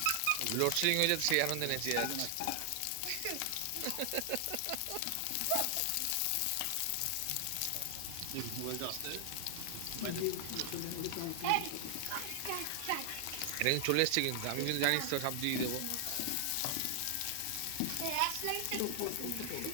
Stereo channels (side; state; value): both; different; correlation 0.00